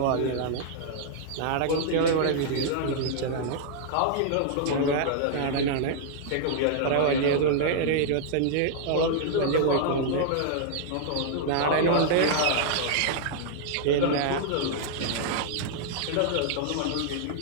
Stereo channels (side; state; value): both; different; correlation -0.01